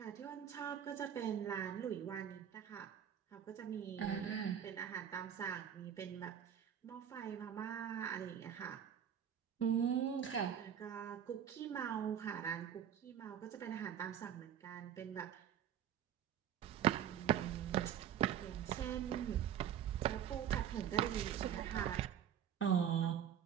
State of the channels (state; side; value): quieter; left; 9.3 dB